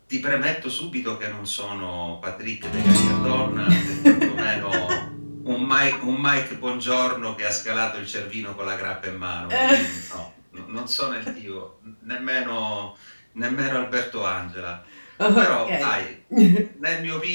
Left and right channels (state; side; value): inverted; both; correlation -1.00